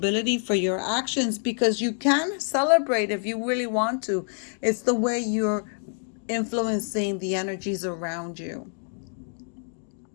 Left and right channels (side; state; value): right; silent; 60 dB below the other